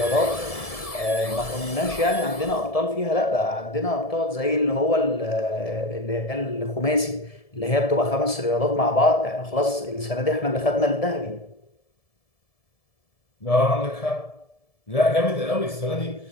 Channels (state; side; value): late; right; 1.7 ms